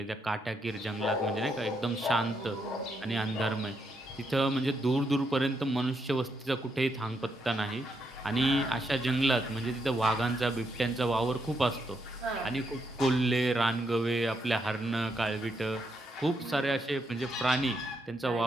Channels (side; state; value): both; normal; correlation 0.79